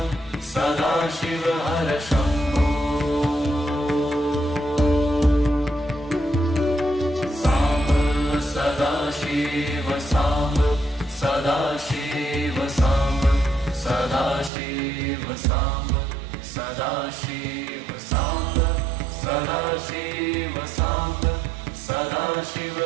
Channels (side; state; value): left; drops out; at 14.5 s